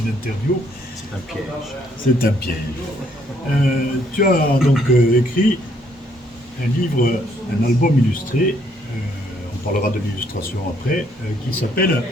interview. C'est un piège. C'est un piège. Tu as donc écrit un livre, un album illustré, on parlera de l'illustration après, qui s'appelle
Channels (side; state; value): both; normal; correlation 0.68